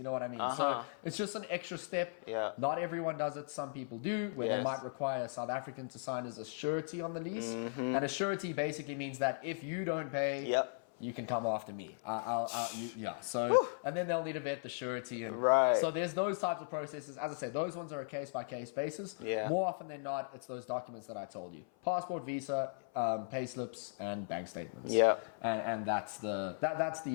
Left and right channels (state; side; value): silent; right; 53 dB below the other